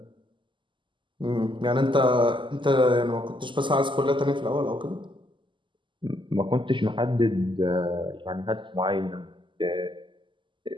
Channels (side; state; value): left; late; 0.24 ms